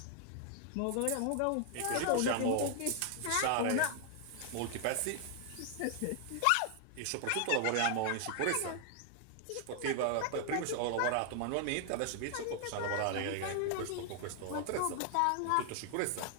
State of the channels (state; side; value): different; both; correlation 0.00